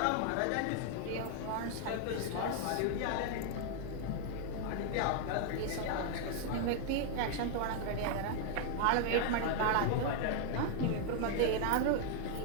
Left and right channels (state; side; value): different; both; correlation 0.00